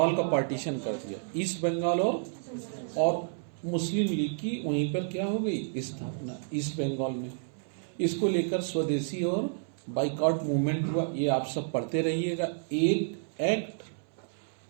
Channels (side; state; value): left; silent; 58 dB below the other